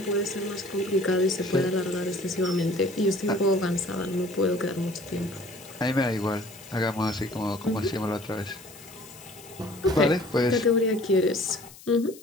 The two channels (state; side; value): noise; left; hiss, 20 dB below the sound